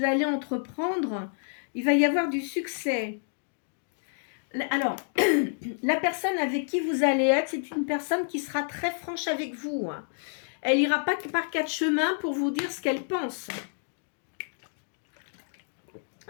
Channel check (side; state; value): right; silent; digital silence